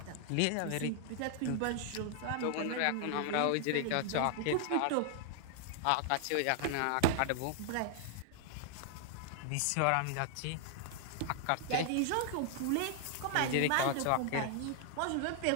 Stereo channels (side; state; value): both; different; correlation 0.00